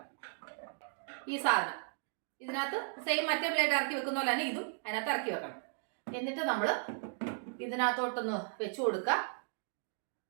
ഈ സാധനം ഇതിനകത്ത് സെയിം മറ്റേ ബ്ലേഡ് ഇറക്കി വെക്കുന്ന പോലെ തന്നെ ഇതും അതിനകത്ത് ഇറക്കി വെക്കണം. എന്നിട്ട് നമ്മൾ ഇതിനകത്തോട്ടൊന്ന് വെച്ച് കൊടുക്കുക.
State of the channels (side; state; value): left; silent; 54 dB below the other